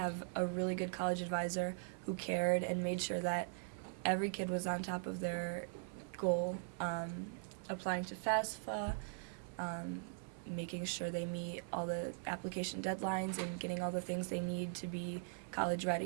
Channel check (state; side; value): silent; left; 51 dB below the other